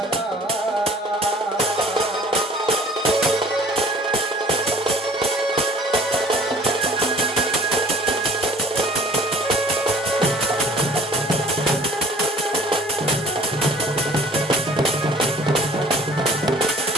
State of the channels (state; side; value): normal; both; correlation 0.51